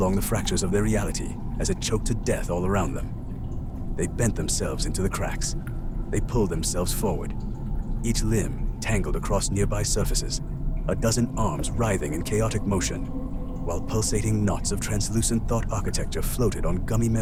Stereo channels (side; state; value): both; identical; correlation 1.00